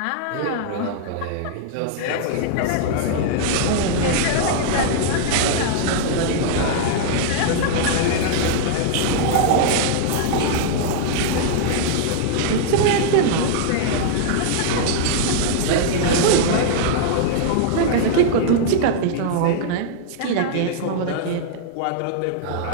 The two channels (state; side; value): different; both; correlation -0.01